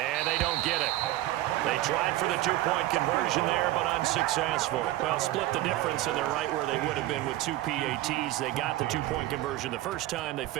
they don't get it. They tried for the 2-point conversion there, but unsuccessful. Well, split the difference, and they're right where they would have been with 2 PATs. They got the 2-point conversion the first time. They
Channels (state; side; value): quieter; left; 15.9 dB